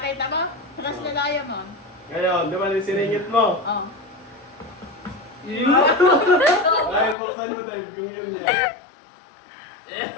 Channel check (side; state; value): right; drops out; at 7.2 s